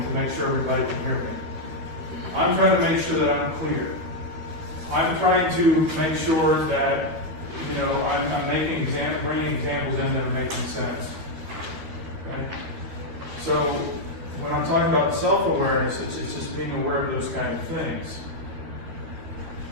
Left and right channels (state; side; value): late; left; 12 ms